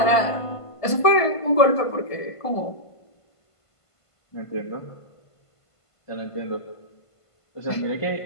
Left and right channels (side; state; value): right; late; 1.5 ms